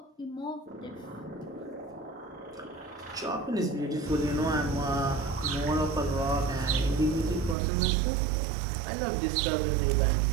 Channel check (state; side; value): drops out; left; at 7.6 s